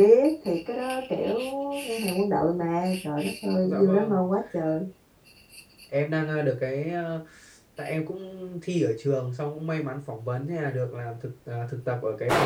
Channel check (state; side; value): identical; both; correlation 1.00